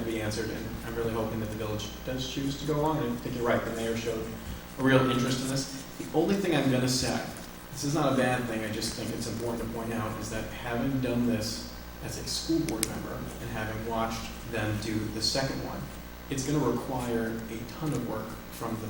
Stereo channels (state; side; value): identical; both; correlation 1.00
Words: to be answered, and I'm really hoping that the village does choose to go along. And I think you're right, the mayor showed a real interest in this. The only thing I'm going to say, this is not a bad thing, I just think it's important to point out, is that having done this as a school board member and having watched them do the second one, it's going to require a ton of work from the